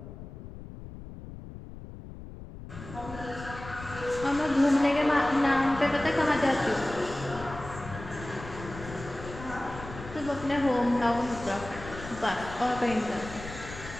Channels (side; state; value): left; noise; rumble, 13 dB below the sound